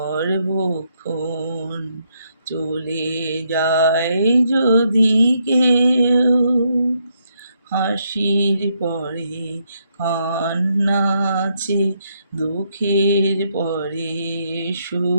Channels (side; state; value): both; inverted; correlation -0.76